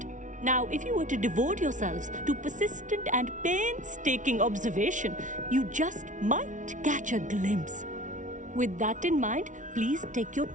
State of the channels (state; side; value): late; left; 0.37 ms